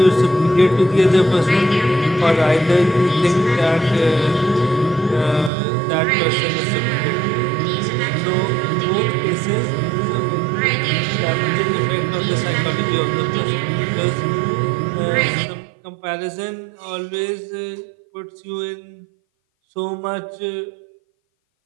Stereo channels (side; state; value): left; drops out; at 5.5 s